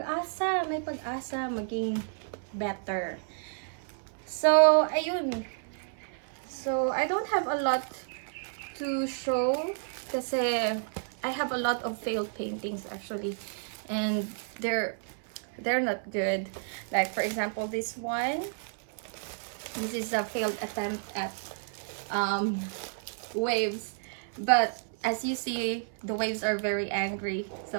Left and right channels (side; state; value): left; silent; 57 dB below the other